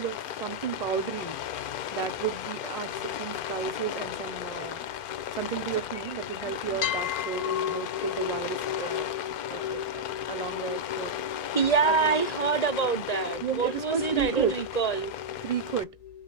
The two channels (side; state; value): right; late; 2.5 ms